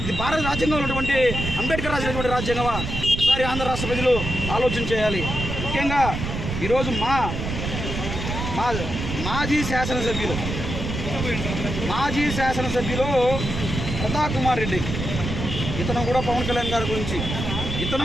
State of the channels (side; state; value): right; noise; rumble, 4 dB below the sound